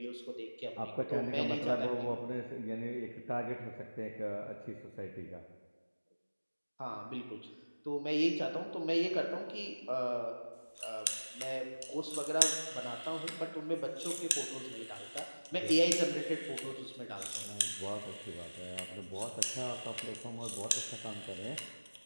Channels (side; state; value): both; inverted; correlation -1.00